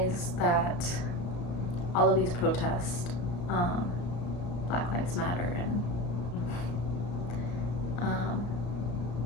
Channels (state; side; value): late; right; 34 ms